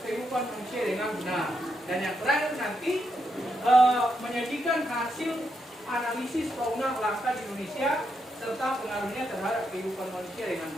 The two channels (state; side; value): normal; both; correlation 0.81